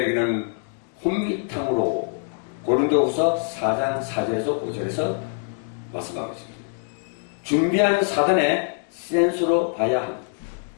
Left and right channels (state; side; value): silent; right; 61 dB below the other